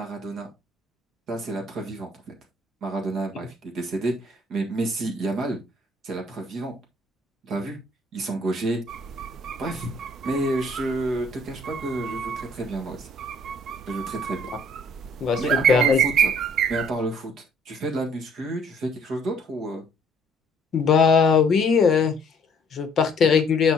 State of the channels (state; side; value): normal; both; correlation 0.61